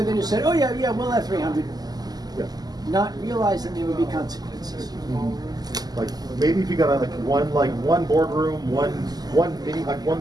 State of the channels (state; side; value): late; left; 0.19 ms